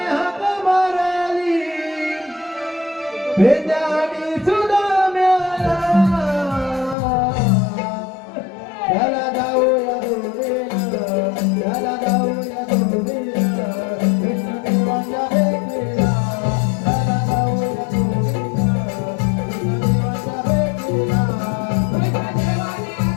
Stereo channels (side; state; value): right; drops out; at 7.0 s